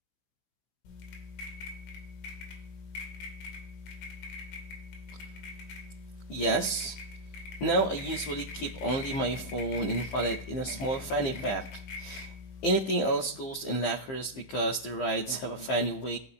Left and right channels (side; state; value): right; late; 15 ms